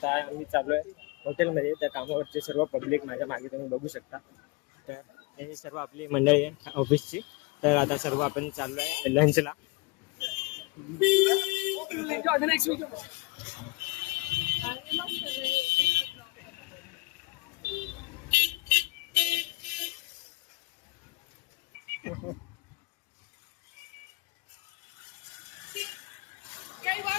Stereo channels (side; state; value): right; quieter; 24.7 dB